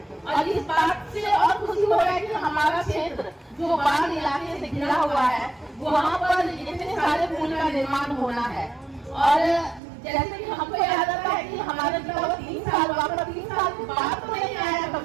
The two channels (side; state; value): left; drops out; at 9.8 s